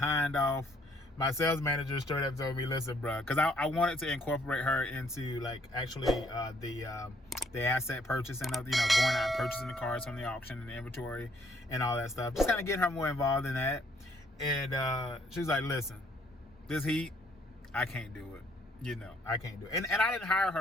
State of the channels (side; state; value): both; normal; correlation 0.65